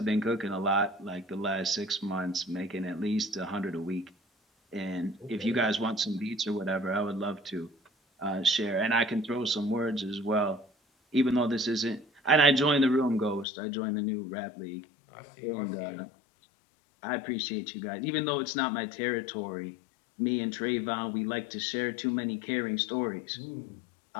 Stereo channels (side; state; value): right; drops out; at 13.5 s